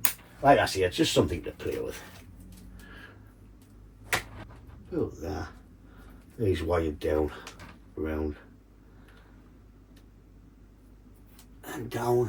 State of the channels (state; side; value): identical; both; correlation 1.00